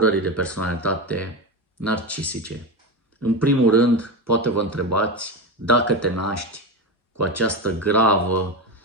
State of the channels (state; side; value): normal; both; correlation 0.18